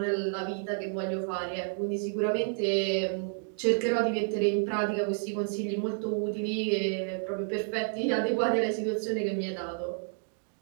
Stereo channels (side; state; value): left; silent; 58 dB below the other